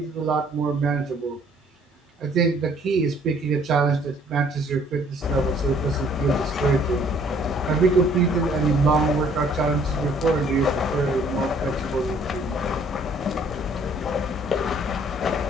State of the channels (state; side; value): normal; both; correlation 0.60